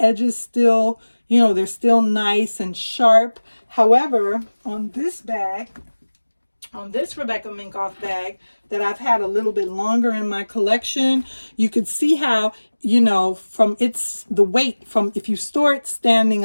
still, you know, they're still nice and sharp. However, on this bag, on this Rebecca Minkoff bag that I've had a little bit longer in my collection, you could see how, you know, from the weight, from if you store it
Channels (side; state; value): both; inverted; correlation -1.00